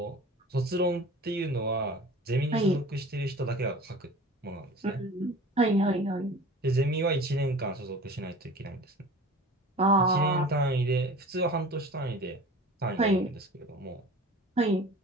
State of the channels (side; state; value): both; normal; correlation 0.40